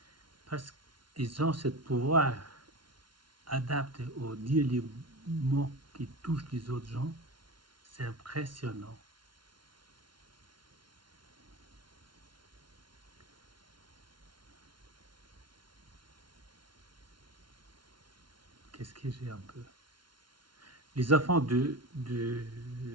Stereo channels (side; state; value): left; late; 0.72 ms